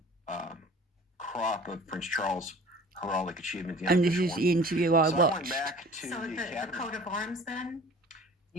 crop of Prince Charles' heraldic achievement. And this is the interview I watched. I went back to the coat of arms then?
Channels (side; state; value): both; normal; correlation 0.46